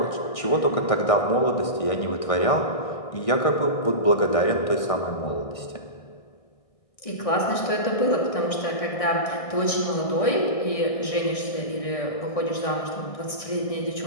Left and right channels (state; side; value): late; right; 1.6 ms